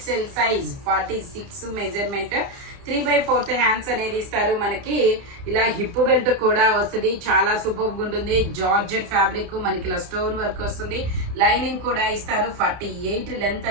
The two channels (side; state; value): left; late; 30 ms